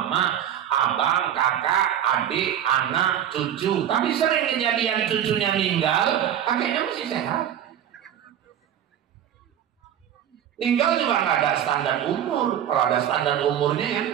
abang, kakak, adik, anak, cucu. Tapi sering kejadian cucunya meninggal, kakeknya masih sehat. Meninggal juga nggak ada standar umur. Kalau ada standar umurnya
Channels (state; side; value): quieter; left; 10.2 dB